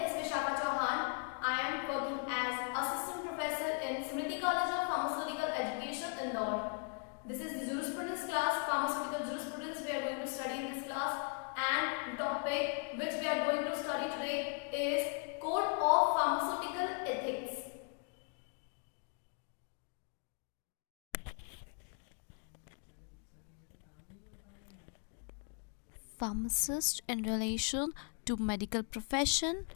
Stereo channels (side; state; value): right; quieter; 40.0 dB